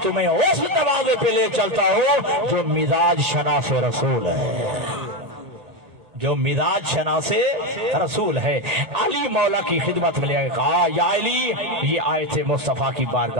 تمہیں اس دروازے پہ لے چلتا ہوں جو مزاج شناس رسول ہے, جو مزاج شناس رسول ہے. علی مولا کی خدمت میں لے آئے, کہا یا علی, یہ آئے تھے مصطفیٰ کی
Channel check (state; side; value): late; left; 1.8 ms